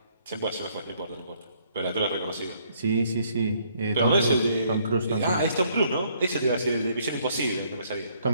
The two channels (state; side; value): inverted; both; correlation -0.67